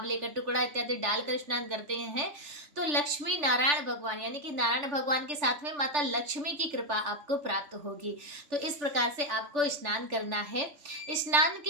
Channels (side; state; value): left; late; 3.4 ms